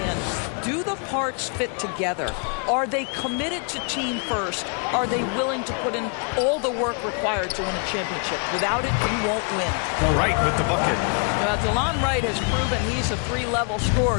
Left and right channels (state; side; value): quieter; right; 39.5 dB